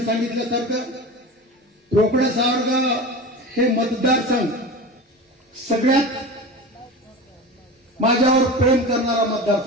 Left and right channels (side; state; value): both; normal; correlation 0.30